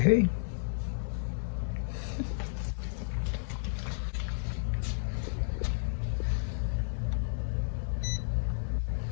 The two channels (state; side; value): silent; right; digital silence